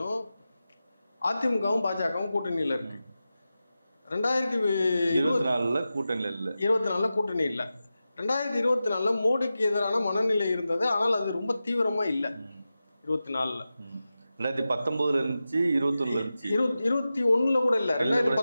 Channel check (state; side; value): inverted; both; correlation -0.93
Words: அதிமுகவும் பாஜகவும் கூட்டணியில இருக்கு. 2024 கூட்டணி இல்ல. 2024 மோடிக்கு எதிரான மனநிலை இருந்தது. ஆனால் அது ரொம்ப தீவிரமா இல்ல. 2019 இருந்துச்சு, 21 கூட இல்ல.